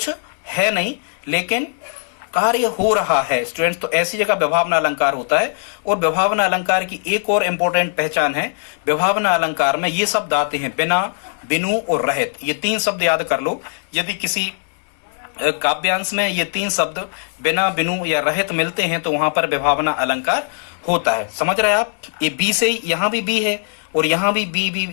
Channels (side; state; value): right; silent; 61 dB below the other